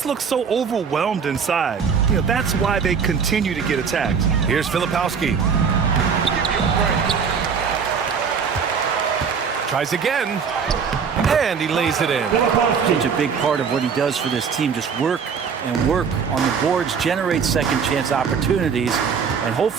look so overwhelmed inside. You know, that's why they continue to get attacked. Here's Filipowski. Tries again. And he lays it in. Such a big part of what he does for this team. Just work and work on the boards, generate second chance opportunities, and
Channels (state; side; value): quieter; left; 6.3 dB